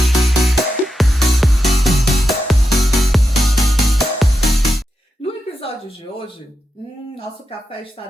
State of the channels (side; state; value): both; normal; correlation 0.88